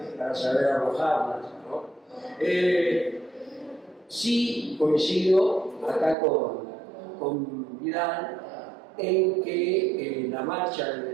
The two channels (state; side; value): drops out; left; at 6.2 s